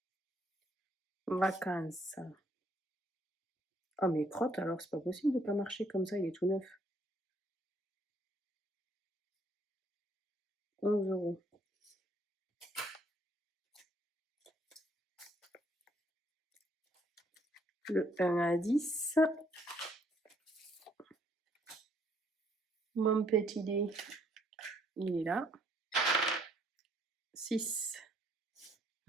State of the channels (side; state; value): both; normal; correlation 0.67